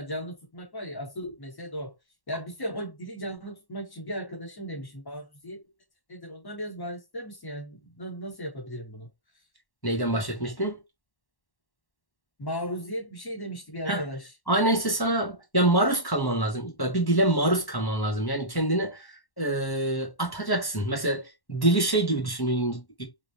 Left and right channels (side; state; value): right; late; 1.1 ms